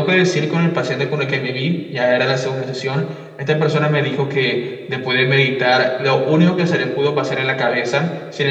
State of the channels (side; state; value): both; identical; correlation 1.00